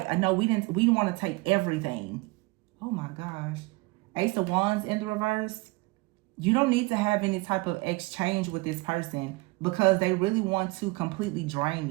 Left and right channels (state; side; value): quieter; left; 24.1 dB